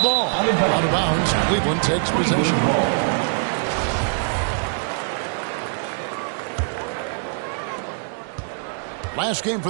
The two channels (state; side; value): silent; left; digital silence